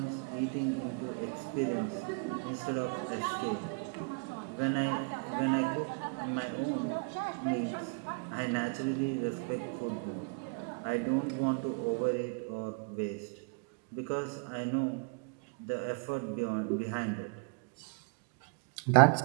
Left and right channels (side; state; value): left; quieter; 37.3 dB